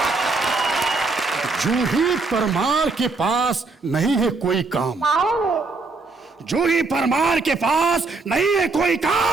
जूही परमार के पास नहीं है कोई काम। जूही परमार के पास नहीं है कोई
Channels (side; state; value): left; quieter; 3.8 dB